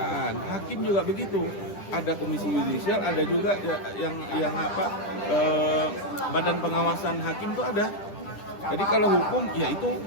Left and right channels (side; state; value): right; late; 10 ms